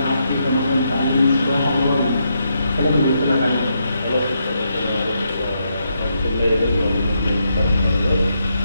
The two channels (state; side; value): inverted; both; correlation -0.80